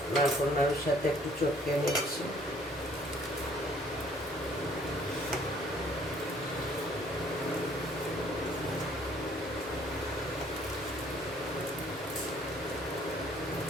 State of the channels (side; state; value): both; normal; correlation 0.59